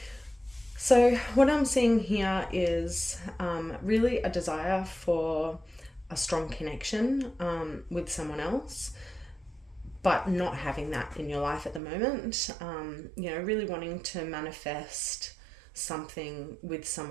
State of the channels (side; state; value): left; drops out; at 11.8 s